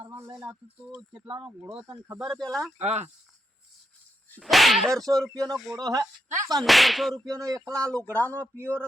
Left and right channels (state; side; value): normal; both; correlation 0.82